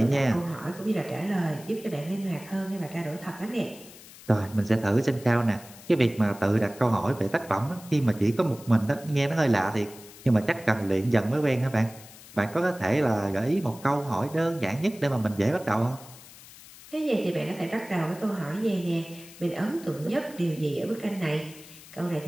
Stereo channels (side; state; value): left; noise; hiss, 19 dB below the sound